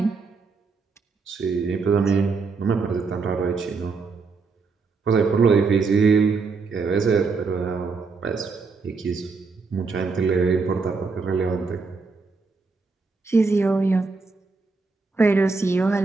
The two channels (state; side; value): quieter; left; 4.4 dB